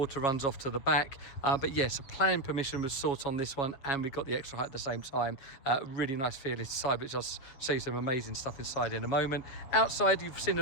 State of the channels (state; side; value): late; right; 7.3 ms